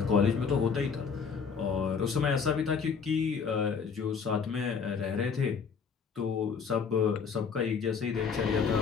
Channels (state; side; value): quieter; right; 5.9 dB